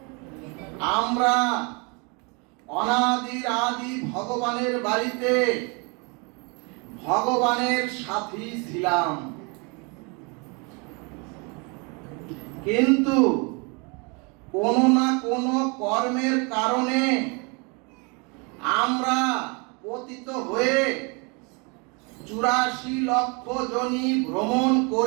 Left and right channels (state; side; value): quieter; left; 31.7 dB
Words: আমরা অনাদির আদি ভগবানের বাড়িতে ভগবানের সাথী ছিলাম, কিন্তু কোনো না কোনো কর্মের কারণে আমরা পতিত হয়ে 84 লক্ষ যোনি ভ্রমণ